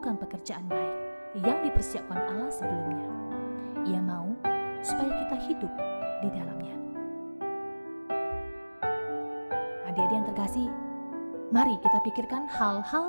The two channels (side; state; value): both; inverted; correlation -1.00